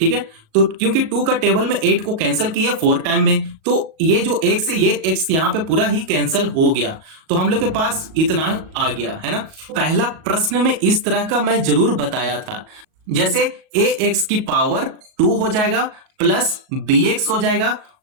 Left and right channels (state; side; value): late; left; 38 ms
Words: है, तो क्योंकि 2 का टेबल में 8 को कैंसिल किया 4 टाइम में, तो ये जो x है ये x यहां पे पूरा ही कैंसिल हो गया। तो हम लोग के पास इतना आ गया, है ना। पहला प्रश्न में इस तरह का मैं जरूर बताया था, जैसे ax की पावर 2 हो जाएगा प्लस bx हो जाएगा